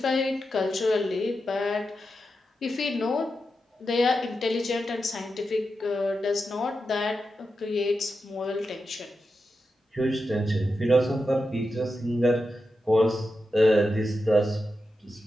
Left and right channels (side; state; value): both; normal; correlation 0.89